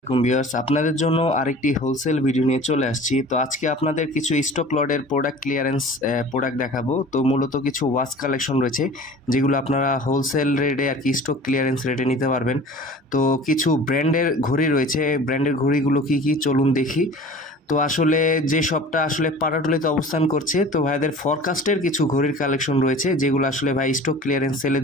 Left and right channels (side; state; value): both; normal; correlation 0.43